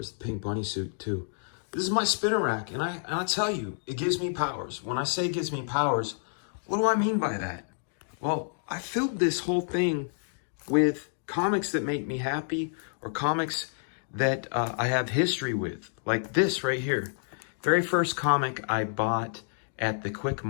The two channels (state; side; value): silent; right; digital silence